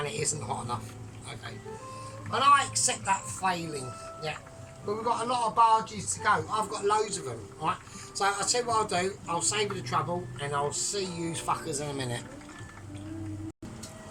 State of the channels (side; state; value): both; identical; correlation 1.00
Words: it isn't hot enough, okay. And I accept that failing, yeah. But we've got a lot of barges to go. I've got loads of them, right? So I'll tell you what I'll do. I'll save you the trouble, and I'll see you fuckers in a minute.